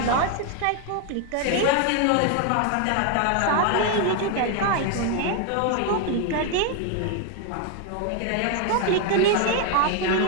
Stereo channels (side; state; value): both; different; correlation 0.01